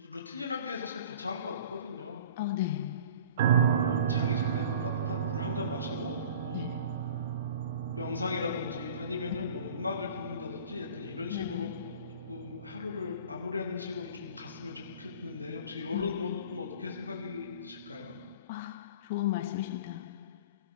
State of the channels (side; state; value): both; inverted; correlation -0.43